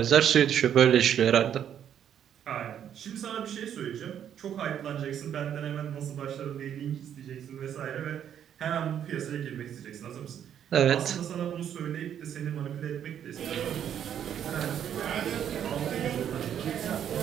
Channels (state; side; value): quieter; left; 9.5 dB